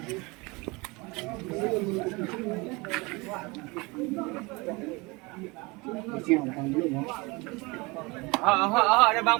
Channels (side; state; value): left; quieter; 25.6 dB